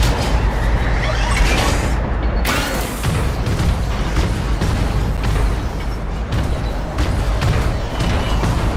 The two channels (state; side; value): identical; both; correlation 1.00